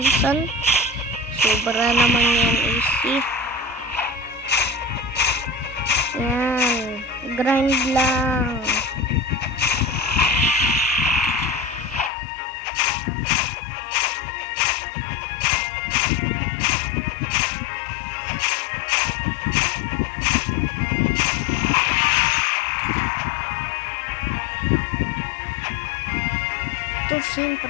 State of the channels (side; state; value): right; drops out; at 12.1 s